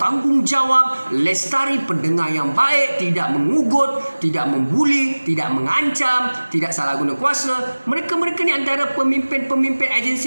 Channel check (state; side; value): inverted; both; correlation -1.00